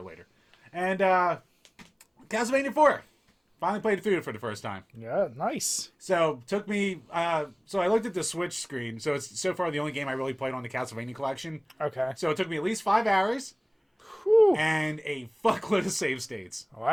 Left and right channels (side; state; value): both; identical; correlation 1.00